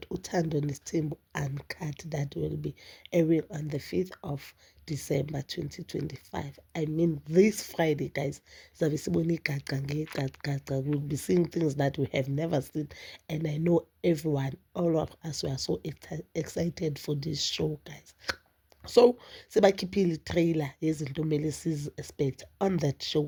Uthando Nesithembu Uncut that will be airing on the 5th of December 2025. I mean this Friday, guys. We'll be seeing things that we have never seen, and I know everyone, all of us, were so excited for this show, guys. So sebakhiphile i-trailer yezinto kumele sizi-expect on that show.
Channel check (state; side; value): identical; both; correlation 1.00